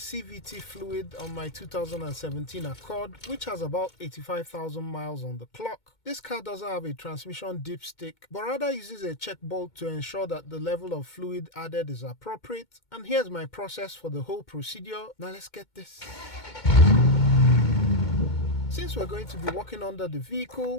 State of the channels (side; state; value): right; late; 2.2 ms